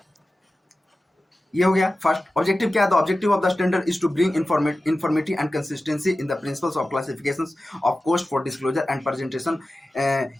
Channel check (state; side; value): normal; both; correlation 0.95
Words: ये हो गया फर्स्ट। ऑब्जेक्टिव क्या है? The objective of the standard is to bring informative and consistency in the principles of classifications of cost for disclosure and presentation